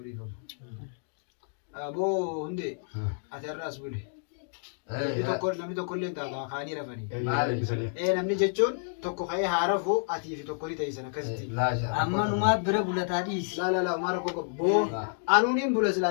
dhiifama aboo hundee ati har'aas bule namni tokko illee taata kaanii rafanii namni jechuun tokko ka'ee haa rafu atii fi tokko ni ta'isan akkasitti amma numaa bira bulataa dhiisi. laa maara koko boo anuuniin bula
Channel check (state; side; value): silent; right; digital silence